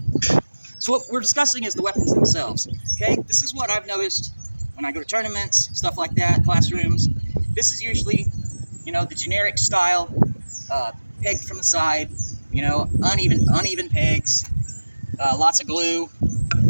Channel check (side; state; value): both; inverted; correlation -1.00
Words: So what we're discussing is the weapons themselves. Okay, this is what I've noticed when I go to tournaments, stuff like that, classrooms. This is usually, you know, the generic style, pegged from the side, you know, uneven pegs, lots of glue,